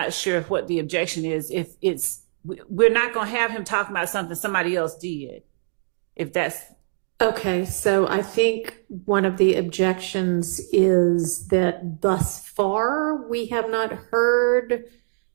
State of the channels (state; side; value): silent; left; digital silence